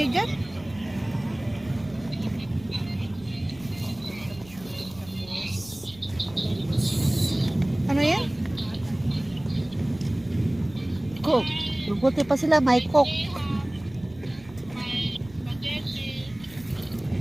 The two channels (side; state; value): right; noise; rumble, 21 dB below the sound